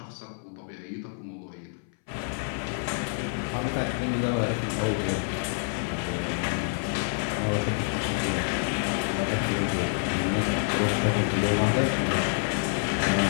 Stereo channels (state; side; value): silent; right; 60 dB below the other